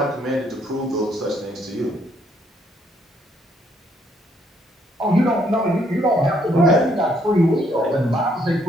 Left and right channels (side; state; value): both; normal; correlation 0.69